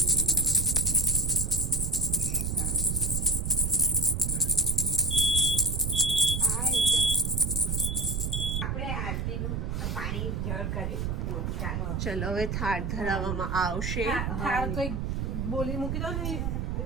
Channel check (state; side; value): noise; right; rumble, 1 dB below the sound